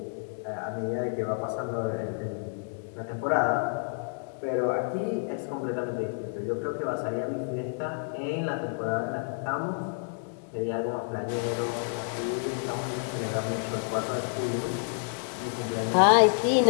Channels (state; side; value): silent; right; digital silence